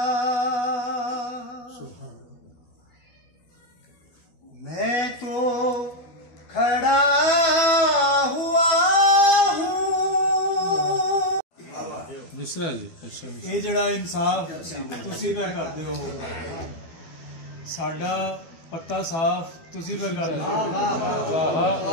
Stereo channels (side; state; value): right; late; 12 ms